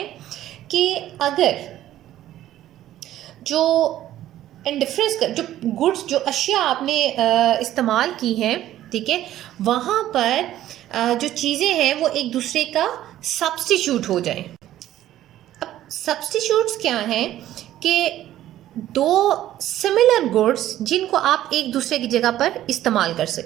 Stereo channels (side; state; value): left; quieter; 13.2 dB